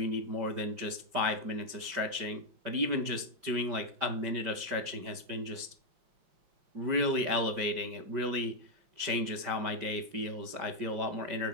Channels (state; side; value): late; left; 5.1 ms